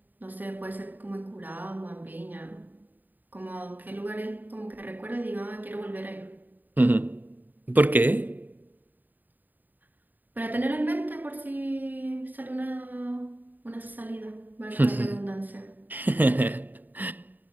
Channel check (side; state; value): left; late; 0.087 ms